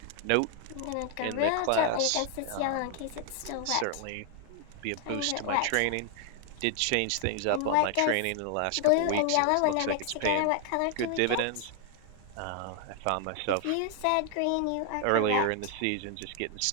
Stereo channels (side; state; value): both; different; correlation 0.00